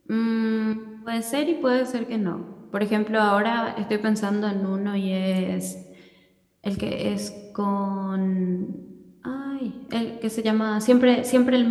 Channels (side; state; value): both; identical; correlation 1.00